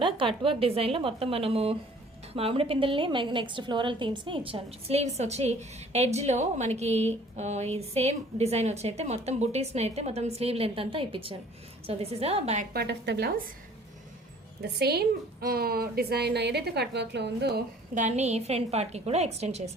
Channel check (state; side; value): normal; both; correlation 0.53